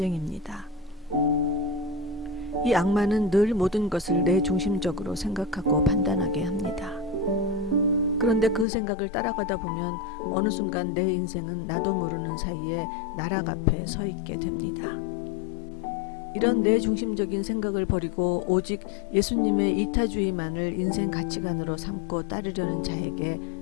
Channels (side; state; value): right; drops out; at 8.7 s